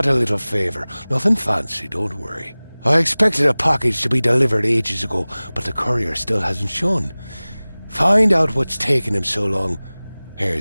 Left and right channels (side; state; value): both; inverted; correlation -0.99